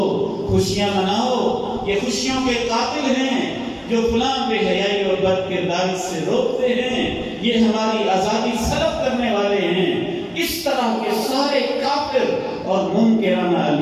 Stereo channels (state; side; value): identical; both; correlation 1.00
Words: خوشیاں مناؤ. یہ خوشیوں کے قاتل ہیں جو فلاں بے حیائی اور بد کرداری سے روکتے ہیں، یہ ہماری آزادی سلب کرنے والے ہیں. اس طرح کے سارے کافر اور منکرانہ